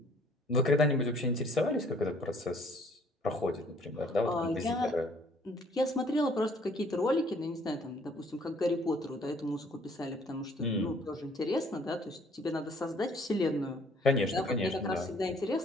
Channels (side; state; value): both; normal; correlation 0.59